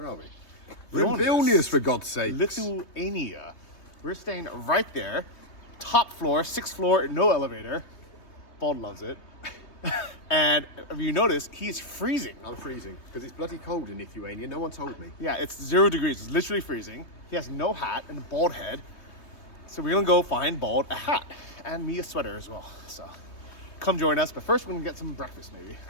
We're in Vilnius, for God's sake. Lithuania. We're staying right there. Top floor, 6th floor, no elevator. Bald loves it. And if you notice, he's freezing. I'm freezing because it's bloody cold in Lithuania. No one told me. Yeah, it's 0 degrees. It's literally freezing. He has no hat and a bald head. So we're gonna go find Bald a hat and me a sweater as well. So come join us. But first, we're gonna get some breakfast maybe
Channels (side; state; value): right; late; 3.2 ms